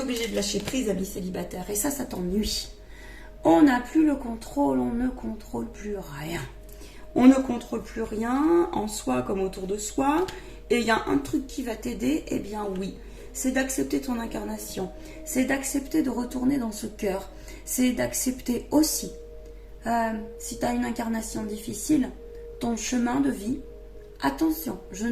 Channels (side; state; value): both; identical; correlation 1.00